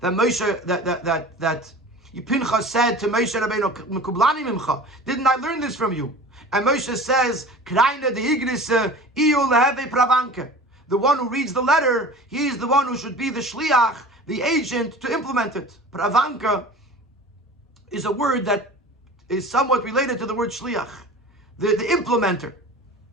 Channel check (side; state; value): both; normal; correlation 0.39